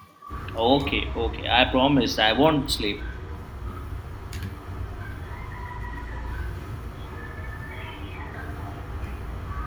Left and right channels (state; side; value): identical; both; correlation 1.00